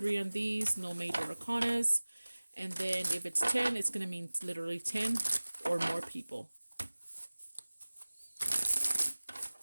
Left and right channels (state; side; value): inverted; both; correlation -1.00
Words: on these. No major arcanas. And then if it's 10, it's going to mean literally 10 or more people.